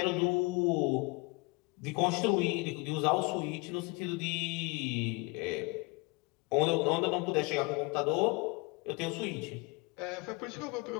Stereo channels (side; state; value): right; quieter; 27.2 dB